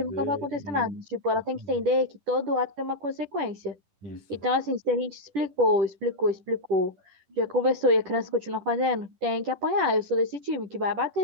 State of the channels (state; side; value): late; left; 10 ms